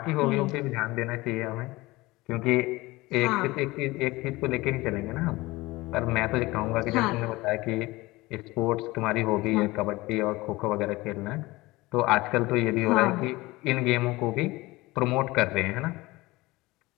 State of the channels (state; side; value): quieter; right; 20.7 dB